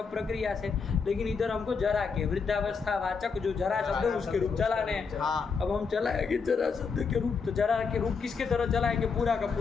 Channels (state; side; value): quieter; right; 5.3 dB